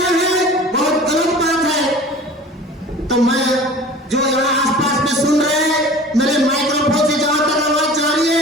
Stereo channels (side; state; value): both; normal; correlation 0.41